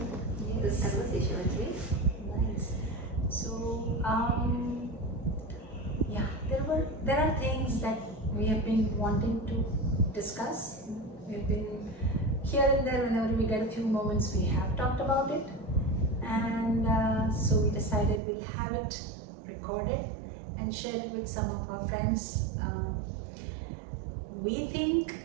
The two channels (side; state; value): left; drops out; at 18.2 s